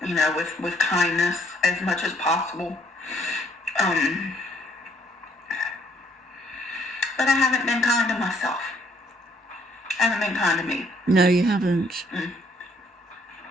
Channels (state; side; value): normal; both; correlation 0.66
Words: With kindness as much as possible. But I haven't been kind to myself. I haven't been kind to me. No, you haven't.